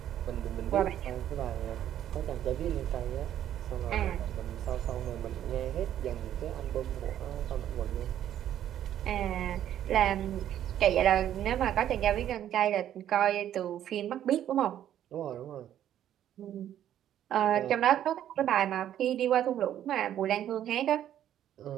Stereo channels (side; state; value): left; quieter; 11.1 dB